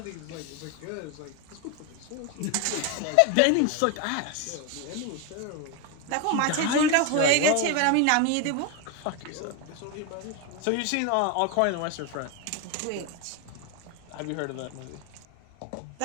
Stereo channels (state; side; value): different; both; correlation 0.02